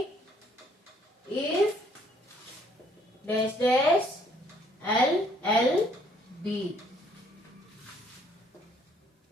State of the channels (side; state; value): both; normal; correlation 0.64